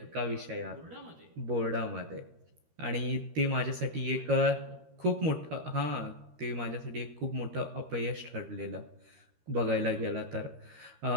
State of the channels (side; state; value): left; late; 13 ms